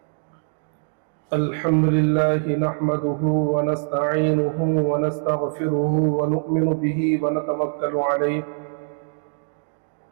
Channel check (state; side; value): silent; left; digital silence